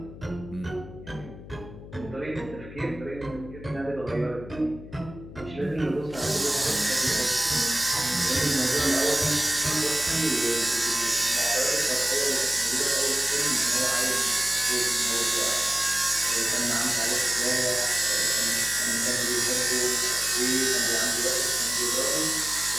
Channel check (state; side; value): noise; left; hum, 15 dB below the sound